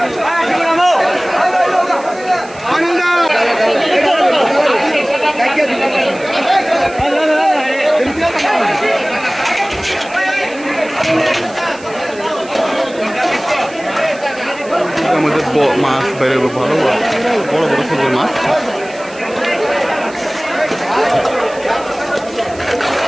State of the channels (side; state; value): right; noise; hiss, 21 dB below the sound